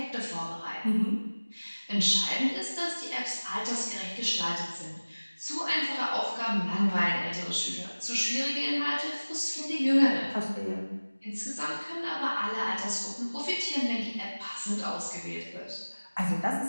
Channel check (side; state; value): both; inverted; correlation -1.00